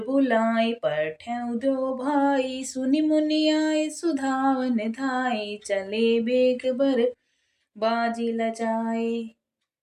बुलाए पठेउ दो भाई। सुनि मुनि आए सुधावन धाई, चले बेग बर बाजी लजाए।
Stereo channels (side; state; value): both; identical; correlation 1.00